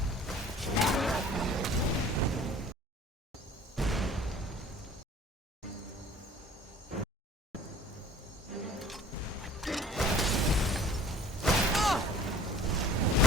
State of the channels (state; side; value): normal; both; correlation 0.49